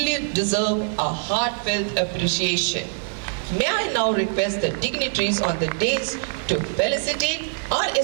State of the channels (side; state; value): left; silent; digital silence